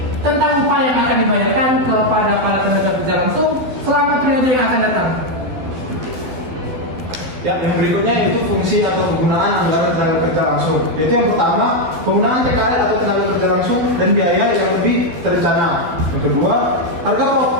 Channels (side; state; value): left; late; 12 ms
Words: tentang upah yang akan dibayarkan kepada para tenaga kerja langsung selama periode yang akan datang. Ya, yang berikutnya yaitu fungsi atau kegunaan anggaran tenaga kerja langsung. Yaitu yang pertama, penggunaan TKL atau tenaga kerja langsung dan biaya yang lebih terencana. Yang kedua,